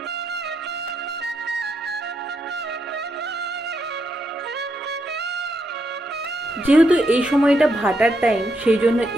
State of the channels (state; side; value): normal; both; correlation 0.80